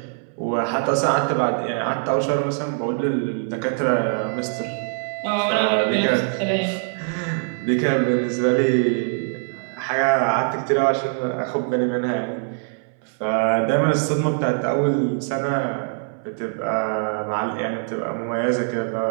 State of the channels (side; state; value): left; silent; 61 dB below the other